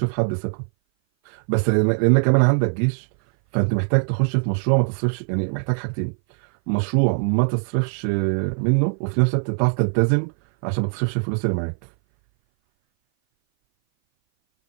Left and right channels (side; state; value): left; silent; 58 dB below the other